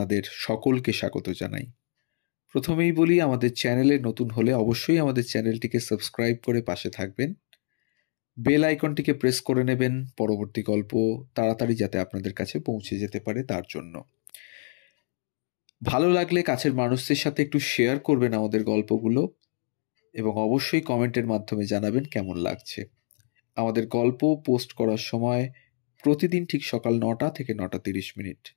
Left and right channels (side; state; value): right; silent; 61 dB below the other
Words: সকলকে স্বাগত জানাই। প্রথমেই বলি, আমাদের চ্যানেলে নতুন হলে অবশ্যই আমাদের চ্যানেলটিকে সাবস্ক্রাইব করে পাশে থাকবেন, বেল আইকনটিকে প্রেস করে নেবেন পরবর্তী গল্প তাড়াতাড়ি যাতে আপনাদের কাছে পৌঁছে যেতে পারে তার জন্য। ভালো লাগলে কাছের মানুষদের সাথে একটু শেয়ার করবেন আমাদের গল্পগুলো, এবং অবশ্যই কমেন্টের মাধ্যমে জানাবেন কেমন লাগছে। আমাদের গল্প পোস্ট করার সময় প্রতিদিন ঠিক সকাল 9টা থেকে 9:30।